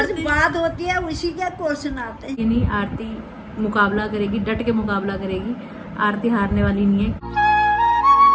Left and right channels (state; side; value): identical; both; correlation 1.00